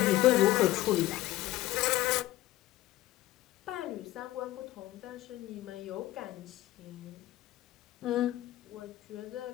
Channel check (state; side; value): quieter; right; 15.8 dB